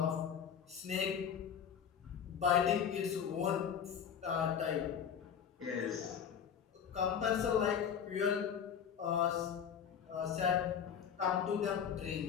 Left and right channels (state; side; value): quieter; right; 8.0 dB